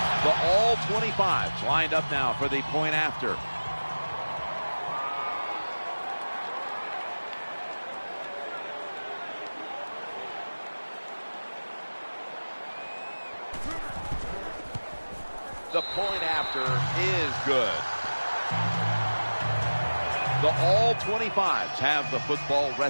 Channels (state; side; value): inverted; both; correlation -1.00